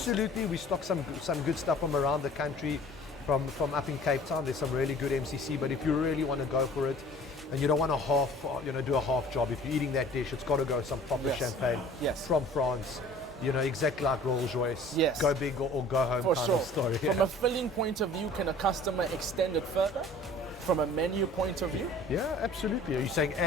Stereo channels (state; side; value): normal; both; correlation 0.48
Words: we stock some good stuff from around the country, from up in Cape Town. There's some really good MCC. But if you really want to go for it, and you don't want to do a half job, if you're eating that dish, it's got to go some proper champagne from France. You know, exactly like Rolls-Royce. Yes. Go big or go home For kind sure. of story. From a filling point of view, can a customer extend it further? From a menu point of view? Yeah, absolutely. Are you saying